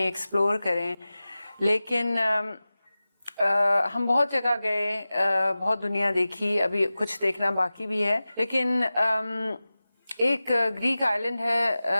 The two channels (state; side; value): inverted; both; correlation -0.96